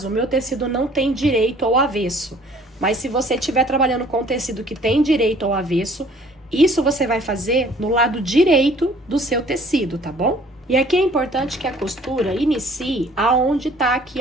o meu tecido não tem direito ao avesso, mas se você estiver trabalhando com tecido que tem direito ao avesso, isso você vai fazer no lado direito do seu tecido, tá bom? E aqui é importante que a costura inicie aonde tá aqui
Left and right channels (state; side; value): normal; both; correlation 0.55